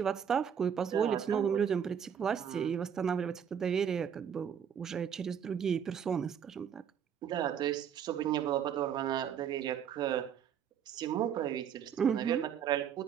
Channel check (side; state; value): left; quieter; 8.2 dB